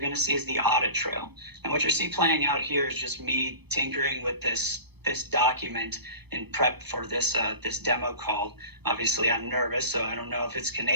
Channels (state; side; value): late; left; 0.98 ms